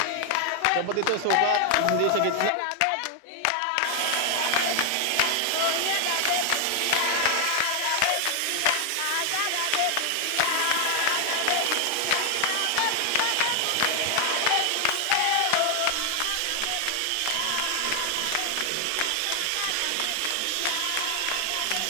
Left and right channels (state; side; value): different; both; correlation 0.00